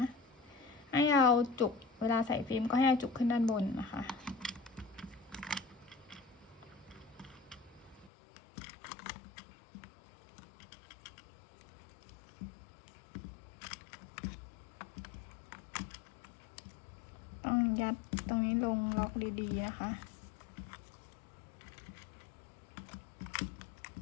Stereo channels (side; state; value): right; drops out; at 8.1 s